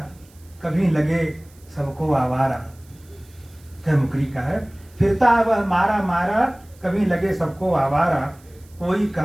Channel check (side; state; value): right; noise; hiss, 29 dB below the sound